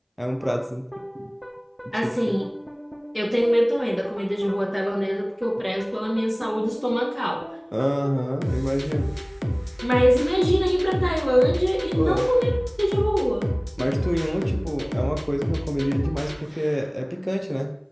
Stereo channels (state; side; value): identical; both; correlation 1.00